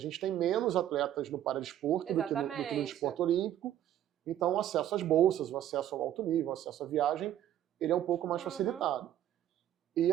tem menos atletas no paradesporto do que no esporte olímpico, então o acesso às bolsas, o acesso ao alto nível, o acesso à viagem, ele é um pouco mais facilitado. E,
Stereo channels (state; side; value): quieter; left; 11.7 dB